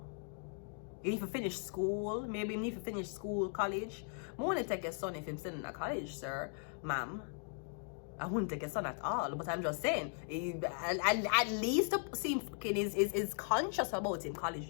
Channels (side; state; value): right; silent; 52 dB below the other